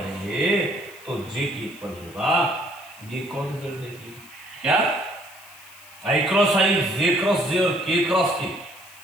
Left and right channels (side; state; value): left; noise; hiss, 21 dB below the sound